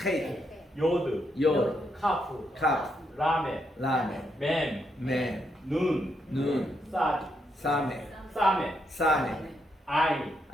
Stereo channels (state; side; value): normal; both; correlation 0.79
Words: 요드, 요, 카프, 카, 라멘, 라멘, 맴, 맨, 눈, 눈, 사디, 사메, 사멘, 사메, 아인,